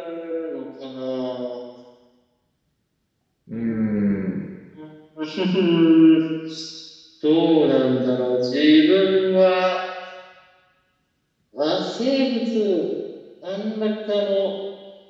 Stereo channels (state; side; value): identical; both; correlation 1.00